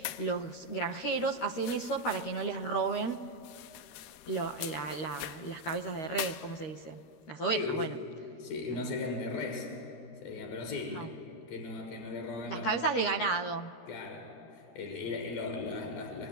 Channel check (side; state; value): right; late; 13 ms